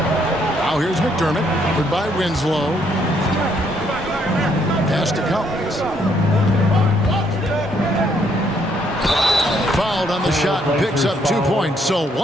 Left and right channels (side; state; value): both; normal; correlation 0.70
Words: Now here's McDermott, covered by Winslow. Pass to Collins. Fouled on the shot, picks up 2 points. So